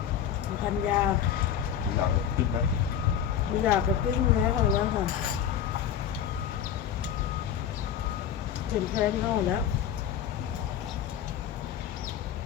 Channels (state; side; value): quieter; right; 9.2 dB